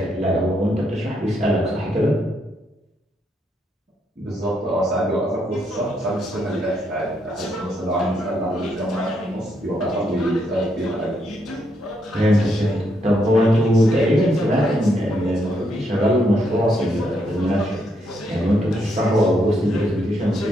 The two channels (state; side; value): normal; both; correlation 0.76